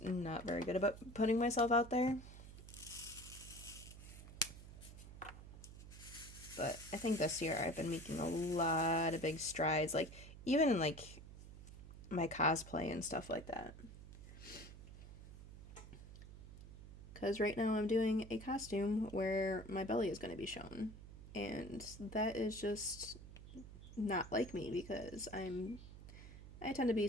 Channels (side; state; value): right; noise; hum, 14 dB below the sound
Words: not very good about putting myself out there. But I think this year I've been making a lot of big strides, like, even in, like, my cosplay and stuff like that. Because right now I'm doing a costume where my belly is going to be shown. And that is just not like me, because I tend to be